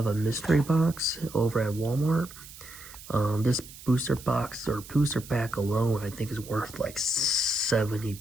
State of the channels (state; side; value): noise; right; hiss, 17 dB below the sound